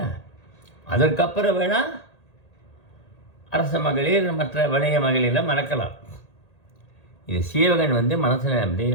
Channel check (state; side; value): late; right; 1.8 ms